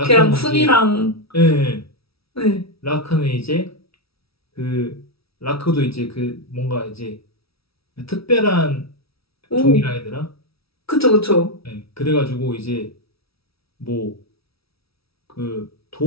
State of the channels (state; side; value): late; right; 0.76 ms